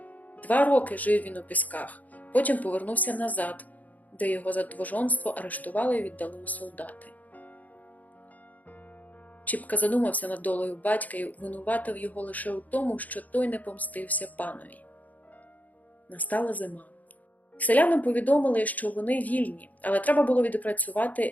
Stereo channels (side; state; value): right; late; 0.078 ms